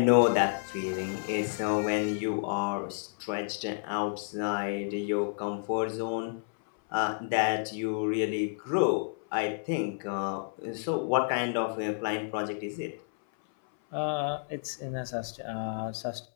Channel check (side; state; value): right; silent; 58 dB below the other